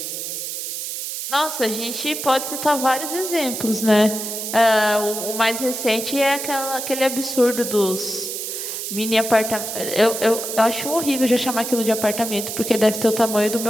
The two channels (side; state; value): right; noise; hiss, 5 dB below the sound